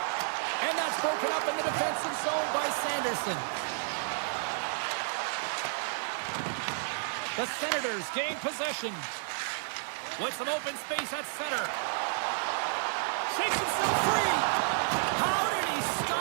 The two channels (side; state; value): left; silent; 57 dB below the other